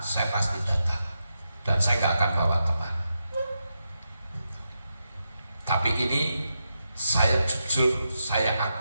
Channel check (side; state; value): both; inverted; correlation -0.87